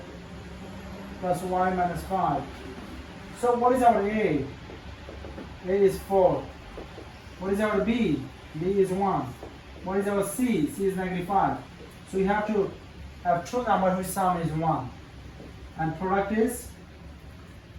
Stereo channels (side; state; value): both; identical; correlation 1.00